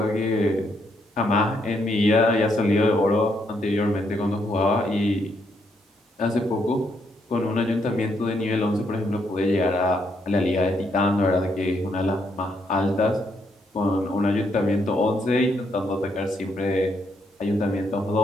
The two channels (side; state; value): both; normal; correlation 0.75